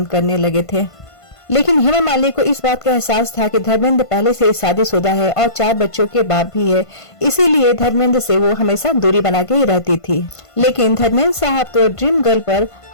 करने लगे थे। लेकिन हेमा मालिनी को इस बात का एहसास था कि धर्मेंद्र पहले से शादीशुदा है और 4 बच्चों के बाप भी है, इसीलिए धर्मेंद्र से वो हमेशा दूरी बना के ही रहती थी। लेकिन धर्मेंद्र साहब तो ड्रीम गर्ल पर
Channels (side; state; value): right; late; 1.5 ms